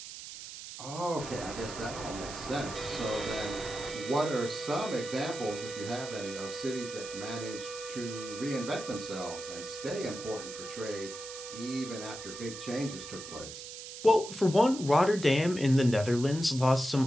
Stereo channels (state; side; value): noise; right; hiss, 11 dB below the sound